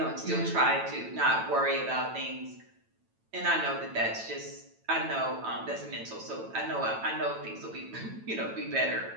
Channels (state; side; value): late; left; 9.0 ms